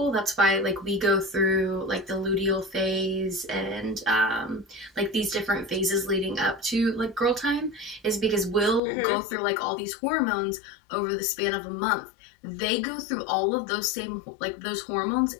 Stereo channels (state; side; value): drops out; right; at 8.8 s